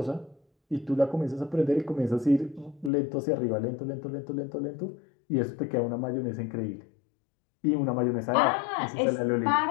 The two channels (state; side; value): drops out; right; at 2.9 s